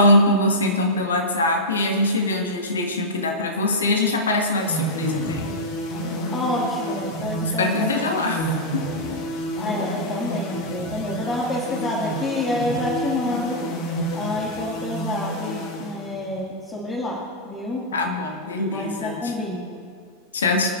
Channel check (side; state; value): both; normal; correlation -0.12